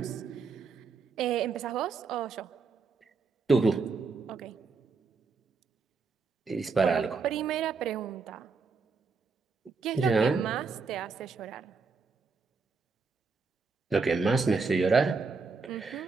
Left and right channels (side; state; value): left; quieter; 4.6 dB